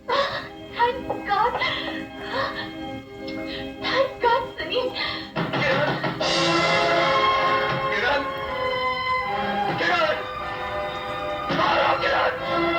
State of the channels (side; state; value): both; identical; correlation 1.00